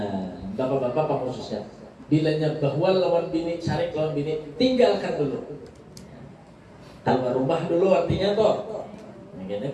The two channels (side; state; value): both; identical; correlation 1.00